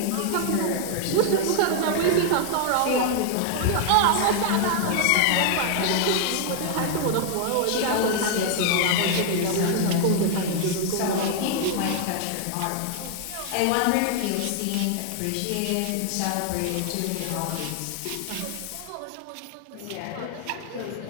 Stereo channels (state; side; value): different; both; correlation 0.00